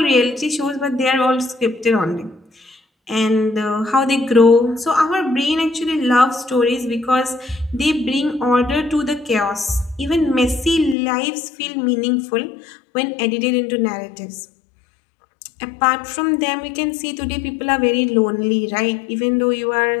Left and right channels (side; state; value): right; drops out; at 11.0 s